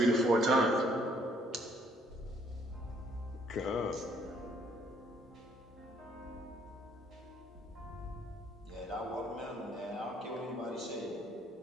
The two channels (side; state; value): both; normal; correlation 0.65